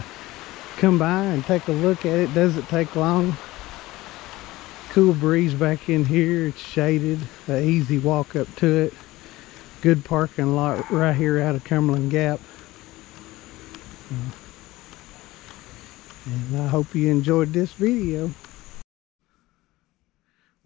come by and take a look at it. Doesn't take long. Cool breeze back in here. It's shaded. An easy walk up to it. Good parking lot right here out of Cumberland Gap. And I hope you enjoyed this video.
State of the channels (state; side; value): quieter; right; 18.5 dB